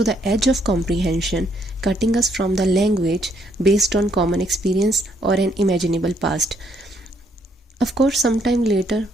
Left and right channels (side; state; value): both; normal; correlation 0.70